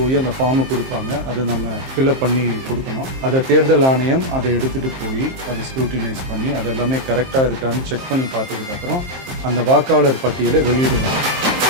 அந்த ஃபார்மை கொடுப்பாங்க. அதை நம்ம ஃபில்அப் பண்ணி கொடுக்கணும். அதை தேர்தல் ஆணையம் அதை எடுத்துகிட்டு போய் அதை ஸ்க்ரூட்டினைஸ் பண்ணி அதெல்லாமே கரெக்டாக இருக்கான்னு செக் பண்ணி பார்த்ததுக்கப்புறம் அந்த வாக்காளர் பட்டியலை வெளியிடுவாங்க.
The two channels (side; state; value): left; late; 23 ms